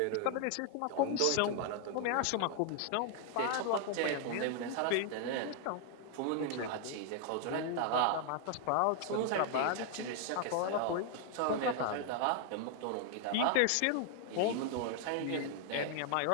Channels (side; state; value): both; different; correlation 0.00